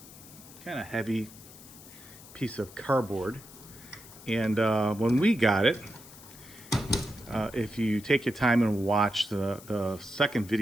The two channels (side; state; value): left; noise; hiss, 19 dB below the sound